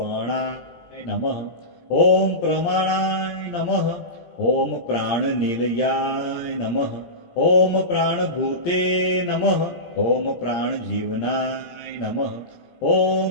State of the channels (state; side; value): late; right; 17 ms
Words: नमः ॐ प्रमाणाय नमः ॐ प्राणनिलयाय नमः ॐ प्राणभूते नमः ॐ प्राणजीवनाय नमः